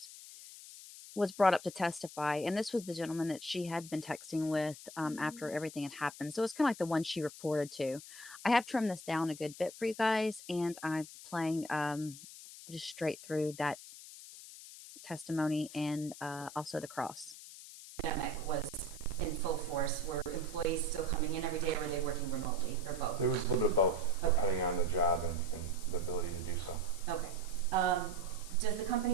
was brought up to testify. And this was the gentleman that she had been texting with after everything had happened. So it's kind of like the one she reported to. I have trimmed this down a good bit for you guys, and I'm playing just straight through that testimony and also the cross. Pandemic was in full force. Were employees still coming in every day, or were they working remotely, or both? It was a little bit of both, Okay. depending on the job and the ability to do so. Okay. Does the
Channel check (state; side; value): noise; left; hiss, 15 dB below the sound